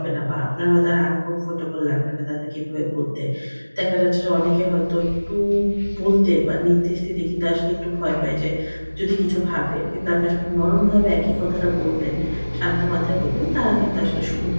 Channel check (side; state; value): both; inverted; correlation -1.00